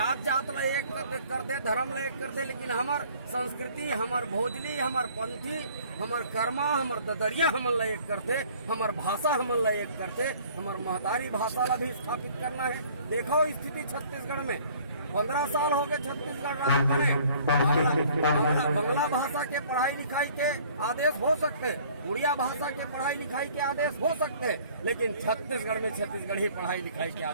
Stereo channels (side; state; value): both; inverted; correlation -0.54